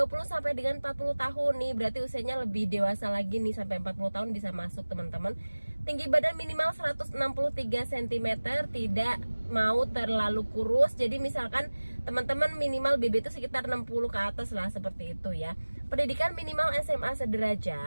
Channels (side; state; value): both; inverted; correlation -1.00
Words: sampai dengan 40 tahun nih, berarti usianya lebih dewasa lagi nih, sampai 40 tahun bisa masuk teman-teman. Tinggi badan minimal 163 cm, tidak mau terlalu kurus. Jadi misalkan teman-teman minimal BB itu sekitar 60 ke atas lah, seperti itu ya. Pendidikan minimal SMA